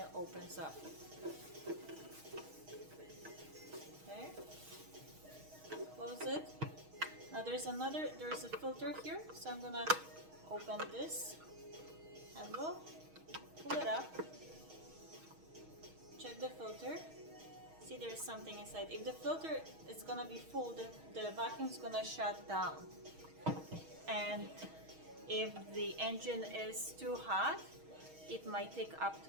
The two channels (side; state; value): left; late; 6.4 ms